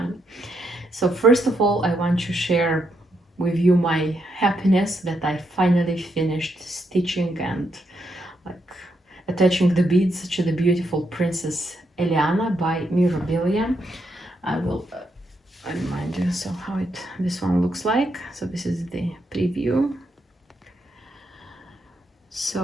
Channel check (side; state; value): both; normal; correlation 0.79